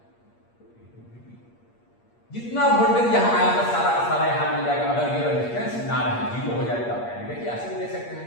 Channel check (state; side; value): late; right; 8.5 ms